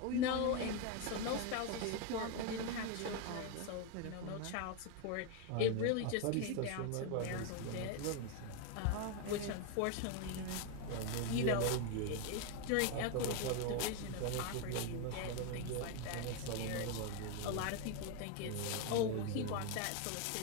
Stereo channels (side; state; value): both; different; correlation 0.02